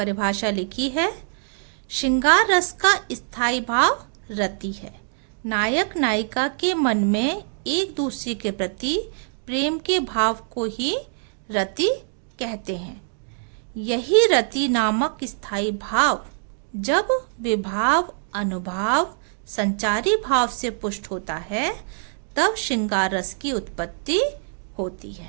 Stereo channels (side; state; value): left; silent; digital silence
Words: लिखी है। श्रृंगार रस का स्थायी भाव रति है। नायक नायिका के मन में एक दूसरे के प्रति प्रेम के भाव को ही रति कहते हैं। यही रति नामक स्थायी भाव जब विभाव, अनुभाव, संचारी भाव से पुष्ट होता है, तब श्रृंगार रस की उत्पत्ति होती